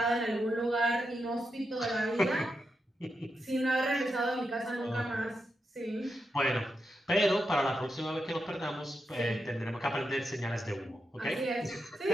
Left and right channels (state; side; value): normal; both; correlation 0.86